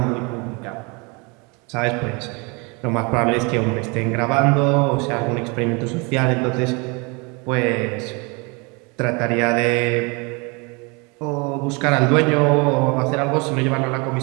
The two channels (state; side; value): quieter; left; 29.6 dB